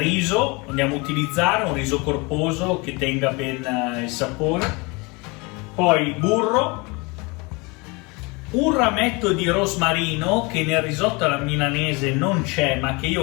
andiamo a utilizzare un riso corposo che tenga ben il sapore, poi burro, un rametto di rosmarino che nel risotto alla milanese non c'è ma che io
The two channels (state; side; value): quieter; right; 27.5 dB